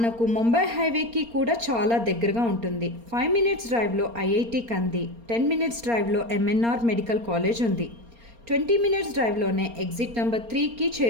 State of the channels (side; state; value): left; late; 4.3 ms